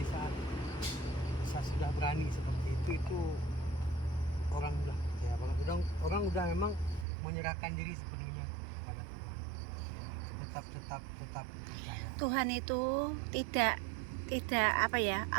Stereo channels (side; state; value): left; drops out; at 7.1 s